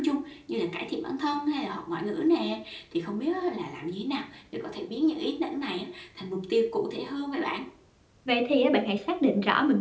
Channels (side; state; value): both; identical; correlation 1.00